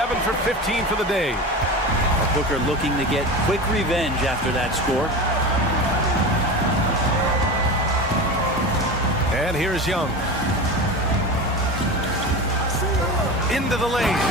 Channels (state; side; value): normal; both; correlation 0.28